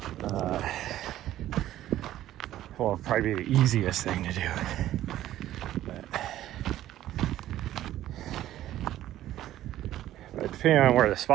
well, probably be the easiest thing to do. But depending on where the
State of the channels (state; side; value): quieter; left; 13.4 dB